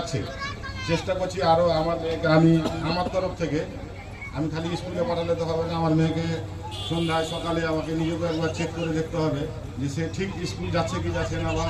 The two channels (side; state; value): both; identical; correlation 1.00